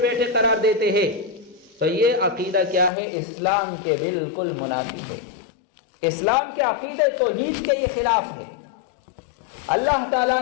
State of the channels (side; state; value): right; drops out; at 2.9 s